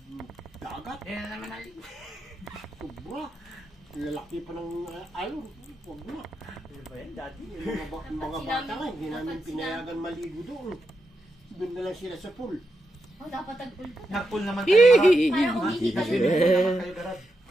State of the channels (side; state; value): both; normal; correlation 0.85